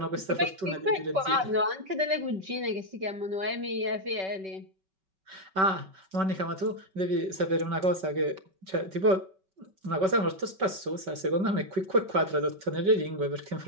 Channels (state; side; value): late; left; 5.3 ms